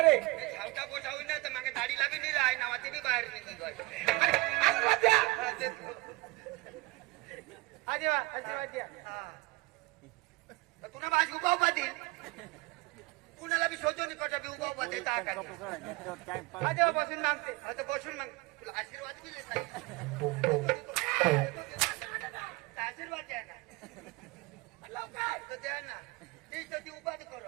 रे धावता पोटा होईल ना तर मागे दाढी लागली नाही आहे नावाची बी बाहेर निघी तुला माझी उभा उभा देईल कुणाला बी शोधून कटा बी उभा उभा देता बसून मागते आता बसून माग तुला आशीर्वाद दिले आशीर्वाद द्या ना लवकर द्या ना ती उभा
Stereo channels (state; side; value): quieter; left; 23.1 dB